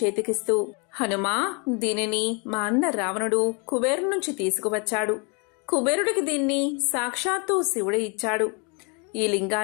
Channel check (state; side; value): quieter; right; 33.1 dB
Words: హనుమా, దీనిని మా అన్న రావణుడు కుబేరు నుంచి తీసుకువచ్చాడు. కుబేరుడికి దీన్ని సాక్షాత్తు శివుడే ఇచ్చాడు. ఈ